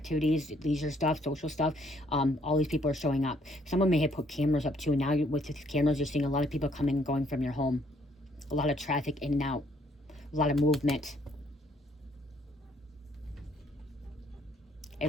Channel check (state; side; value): normal; both; correlation 0.66